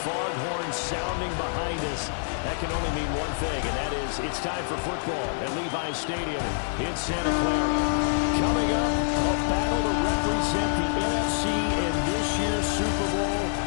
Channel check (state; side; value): silent; right; digital silence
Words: foghorn sounding behind us, that can only mean one thing, and that is it's time for football at Levi's Stadium in Santa Clara. Coming up, a battle to represent the NFC in this year's Super Bowl,